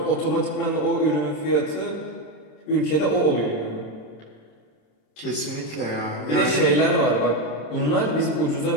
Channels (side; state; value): right; late; 26 ms